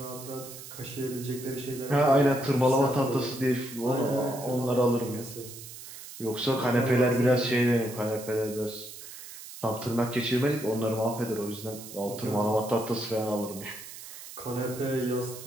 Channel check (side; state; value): right; noise; hiss, 14 dB below the sound